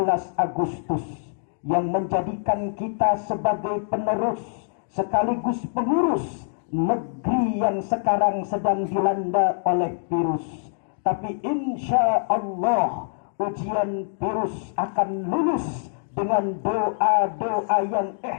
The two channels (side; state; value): right; silent; digital silence